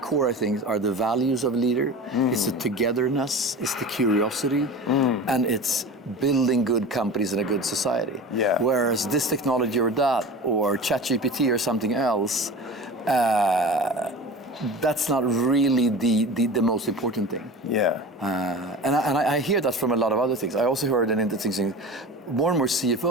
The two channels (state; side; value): normal; both; correlation 0.34